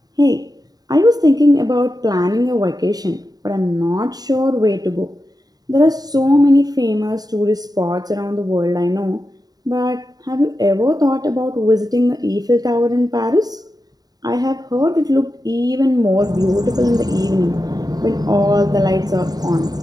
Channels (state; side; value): late; left; 0.18 ms